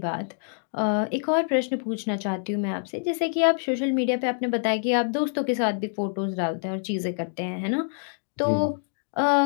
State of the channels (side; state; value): right; silent; digital silence